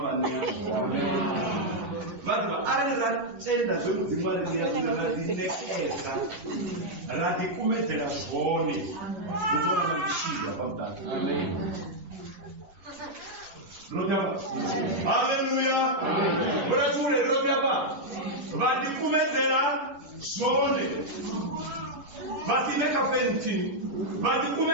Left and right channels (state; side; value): late; left; 10 ms